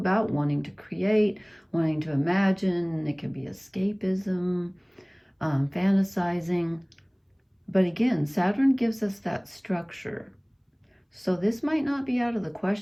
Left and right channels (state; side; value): identical; both; correlation 1.00